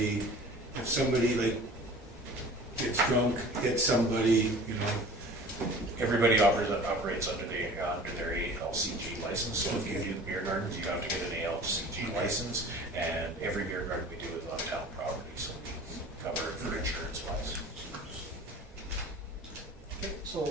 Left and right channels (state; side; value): normal; both; correlation 0.43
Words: if somebody gets drunk, gets somebody, Everybody operates under their ALCG license, so if you do the beer gardens, you have to get an ALCG license, and every beer garden we do is on town property, so we cover it for insurance wise. Okay,